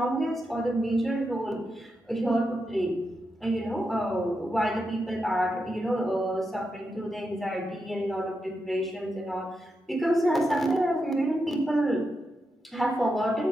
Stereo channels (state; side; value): normal; both; correlation 0.86